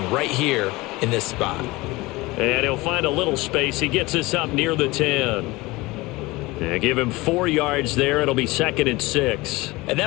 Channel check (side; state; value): right; quieter; 21.5 dB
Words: right here in this spot. And he'll find a little space. He gets us up near the 10. And give him 4 yards there. It'll be 2nd and 6. And